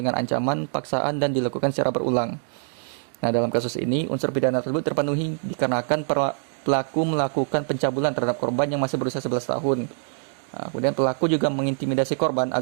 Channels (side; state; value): left; silent; digital silence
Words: ancaman, paksaan, dan dilakukan secara berulang. Dalam kasus ini, unsur pidana tersebut terpenuhi dikarenakan pelaku melakukan pencabulan terhadap korban yang masih berusia 11 tahun. Kemudian pelaku juga mengintimidasi korban